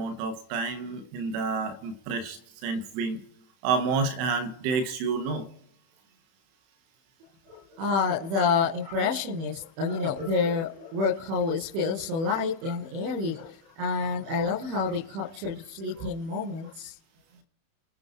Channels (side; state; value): left; late; 31 ms